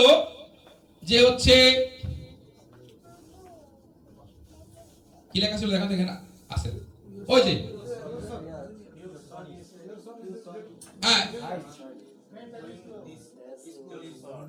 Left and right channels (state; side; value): identical; both; correlation 1.00